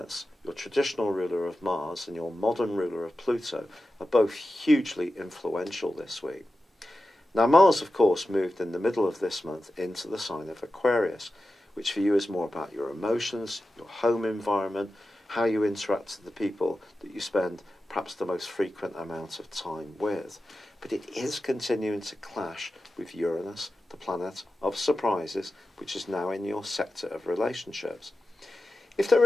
your traditional ruler of Mars and your modern ruler of Pluto, are both hugely influential this week. Now Mars, of course, moved in the middle of this month into the sign of Aquarius, which for you is more about your emotions, your home environment, how you interact with the people that you spend perhaps the most frequent amount of time with. But it is continuing to clash with Uranus, the planet of surprises, which is now in your sector of relationships. If there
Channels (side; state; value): both; normal; correlation 0.92